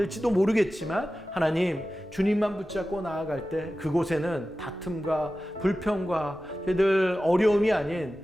모르겠지만 하나님, 주님만 붙잡고 나아갈 때 그곳에는 다툼과 불평과 저희들 어려움이 아닌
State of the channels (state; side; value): normal; both; correlation 0.94